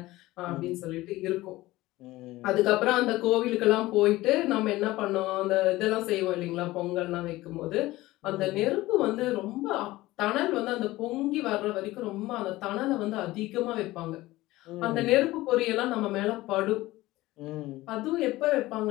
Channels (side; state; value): right; quieter; 18.1 dB